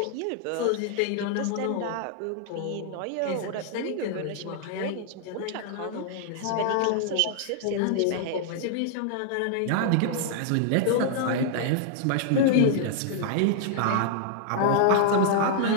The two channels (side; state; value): both; different; correlation -0.01